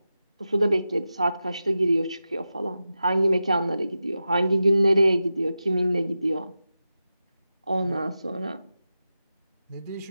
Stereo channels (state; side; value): inverted; both; correlation -0.92